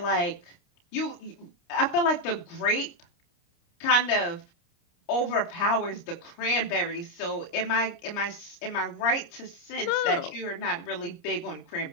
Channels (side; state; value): right; late; 29 ms